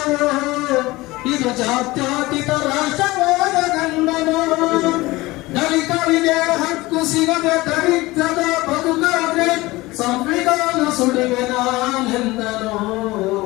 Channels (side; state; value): right; quieter; 20.2 dB